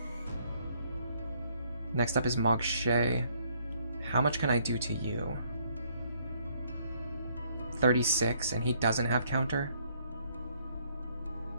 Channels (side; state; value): both; inverted; correlation -0.67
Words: Next up is Marche. How much can I do to you? 36, and he doesn't have counter?